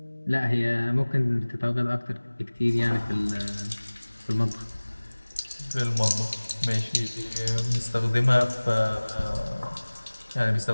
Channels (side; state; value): both; inverted; correlation -1.00